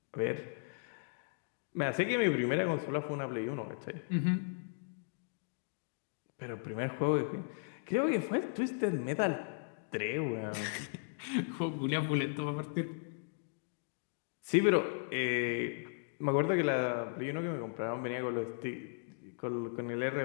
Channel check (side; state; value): right; silent; digital silence